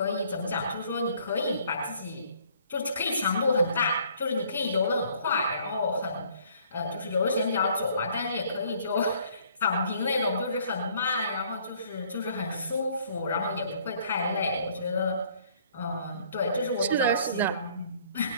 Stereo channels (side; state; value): both; inverted; correlation -0.60